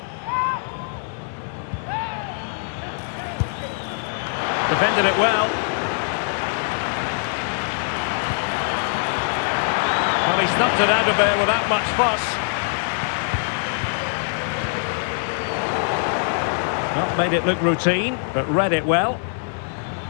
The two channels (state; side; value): silent; right; digital silence